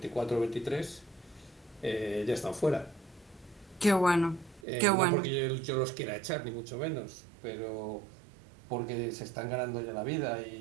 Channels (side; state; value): left; drops out; at 4.6 s